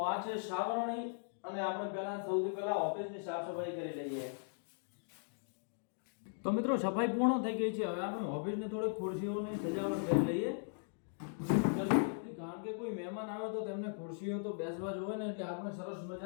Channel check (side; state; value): right; silent; digital silence